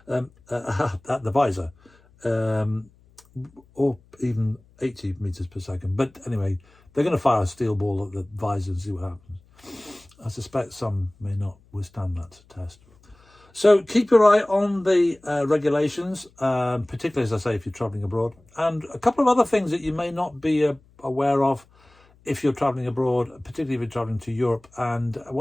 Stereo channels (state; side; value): noise; left; hum, 30 dB below the sound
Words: at the visor, or even 80 meters per second. But anyway, they're going to fire a steel ball at the visor and see what happens. I suspect some may not withstand that test. So keep your eye on the regulations, particularly, as I say, if you're travelling abroad. And a couple of other things that you may not be aware of if you're travelling abroad, particularly if you're travelling to Europe. And